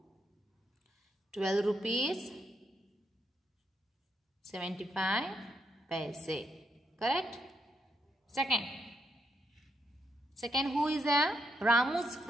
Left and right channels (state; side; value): normal; both; correlation 0.79